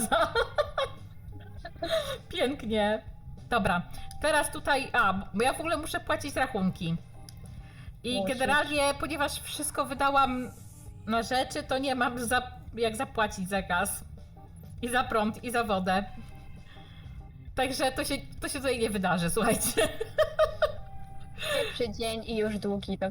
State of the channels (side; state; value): both; identical; correlation 1.00